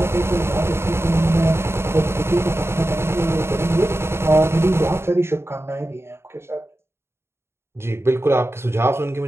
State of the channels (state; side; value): late; left; 0.12 ms